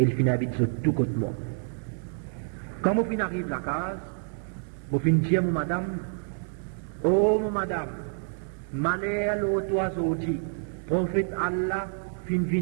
ils finissent habiter sur tout côté moi. Quand mon fin arrive à la case, mon fin dit à mon madame, oh mon madame, malheur l'autre oiseau dit, prophète Allah fin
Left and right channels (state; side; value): silent; left; digital silence